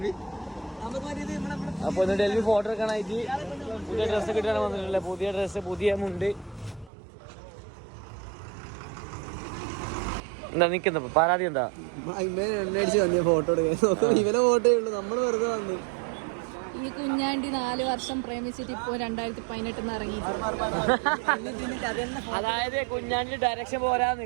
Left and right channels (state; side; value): drops out; left; at 6.9 s